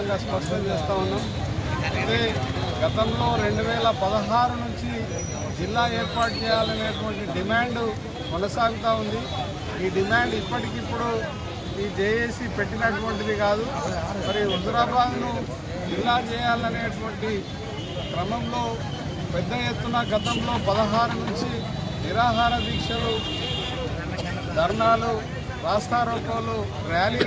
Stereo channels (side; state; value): both; identical; correlation 1.00